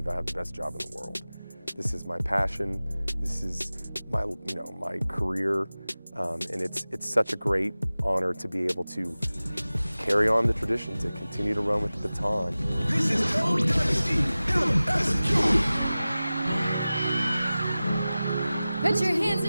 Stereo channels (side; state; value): both; inverted; correlation -0.97